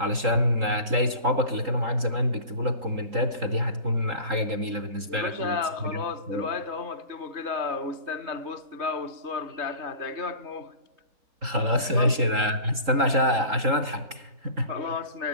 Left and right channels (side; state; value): left; late; 3.8 ms